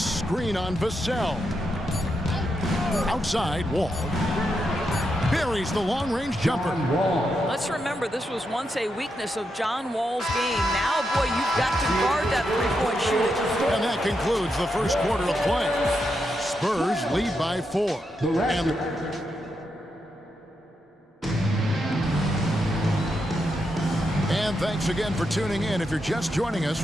screen on Vassell. Outside, Wall. Buries the long-range jumper. Let's remember, this was once a weakness of John Wall's game. Now, boy, you've got to guard that three-point shooting. And that concludes the first quarter of play. Spurs lead by 4. And thanks again for tuning in. If you're just joining us,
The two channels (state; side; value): normal; both; correlation 0.84